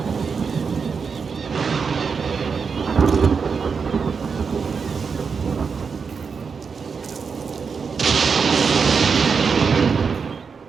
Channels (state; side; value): quieter; left; 5.6 dB